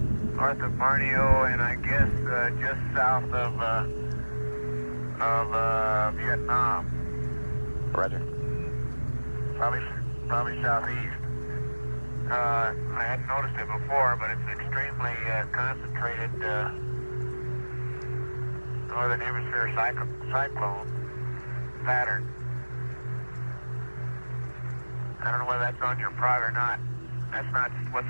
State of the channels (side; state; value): both; inverted; correlation -1.00